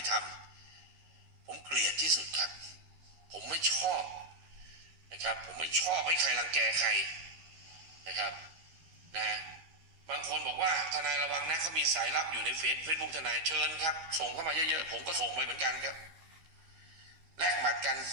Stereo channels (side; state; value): left; late; 12 ms